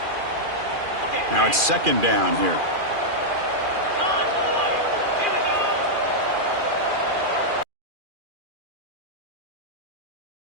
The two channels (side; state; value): left; late; 2.4 ms